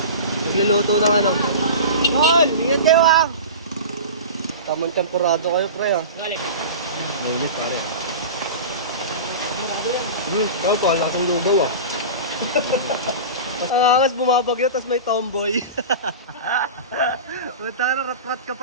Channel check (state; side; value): inverted; both; correlation -0.31